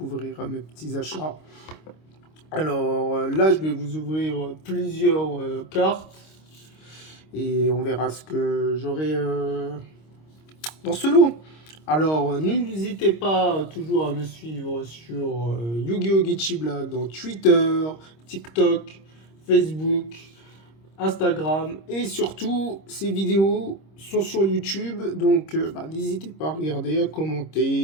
mes petits achats. Alors là, je vais vous ouvrir plusieurs cartes et on verra ce que j'aurai dans ce lot. Alors, n'hésitez pas toujours à me suivre sur Yu-Gi-Oh! Geechi Black dans Twitter, TikTok, Facebook, Instagram et surtout ces vidéos sont sur YouTube. Donc, n'hésitez pas à regarder, à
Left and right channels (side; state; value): right; late; 26 ms